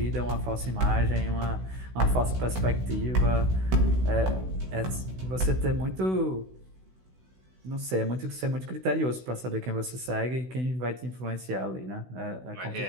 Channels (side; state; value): left; late; 16 ms